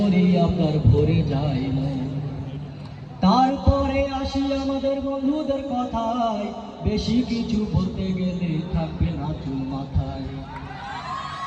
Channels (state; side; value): identical; both; correlation 1.00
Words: আপনার ভরে যায় মন। তারপরে আসি আমাদের বন্ধুদের কথায়, বেশি কিছু বলতে গেলে থাকবে না চুল মাথায়।